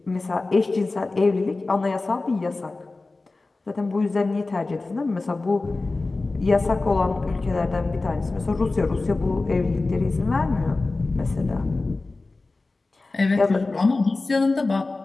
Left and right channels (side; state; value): right; quieter; 3.4 dB